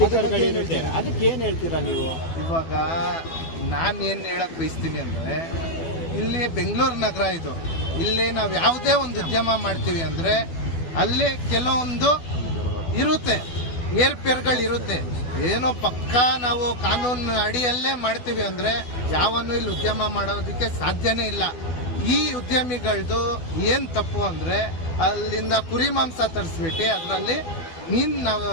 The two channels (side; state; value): right; late; 12 ms